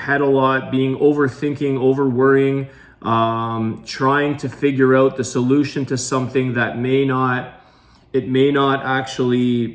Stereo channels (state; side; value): identical; both; correlation 1.00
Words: a lot, being overthinking, over worrying, trying to figure out the solution to something that it may not